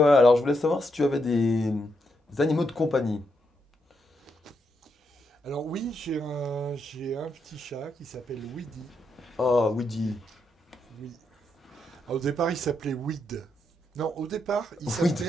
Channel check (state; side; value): normal; both; correlation 0.80